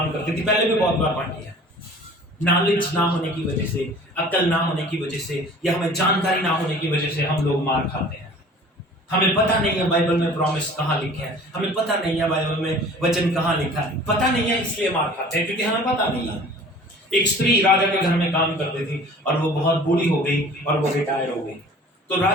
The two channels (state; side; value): normal; both; correlation 0.46